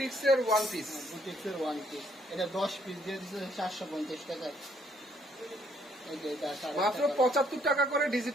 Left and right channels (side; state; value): both; normal; correlation 0.66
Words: ওয়ান পিস। বুটিক্সের ওয়ান পিস, এটা 10 পিস দিয়ে দিচ্ছে 450 টাকা। এই যে এটা 450 মাত্র 75 টাকা করে